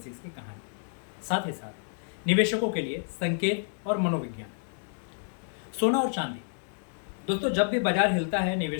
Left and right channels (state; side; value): silent; right; 58 dB below the other